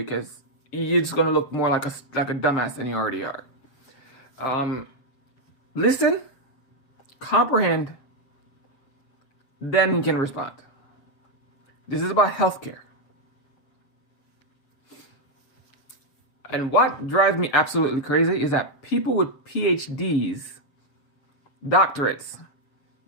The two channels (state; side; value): late; right; 7.5 ms